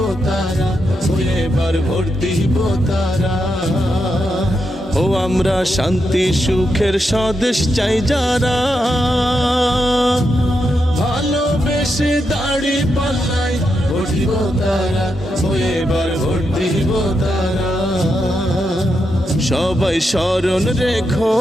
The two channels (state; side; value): normal; both; correlation 0.84